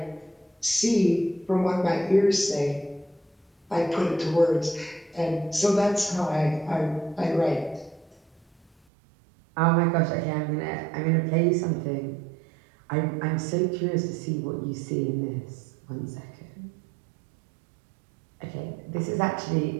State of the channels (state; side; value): drops out; left; at 8.7 s